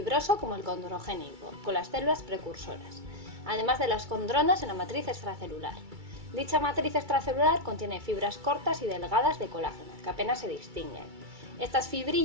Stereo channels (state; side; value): late; left; 2.3 ms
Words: como el condrogénico, con las células precursoras, además de las condronas en la matriz extracelular. Dicha matriz extracelular contiene fibras cortas y delgadas de colágeno, que apenas se distinguen. Estas